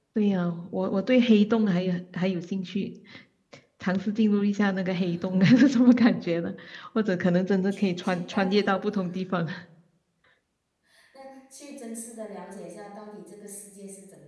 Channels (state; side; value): identical; both; correlation 1.00